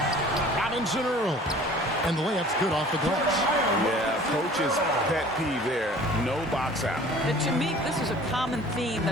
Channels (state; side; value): normal; both; correlation 0.47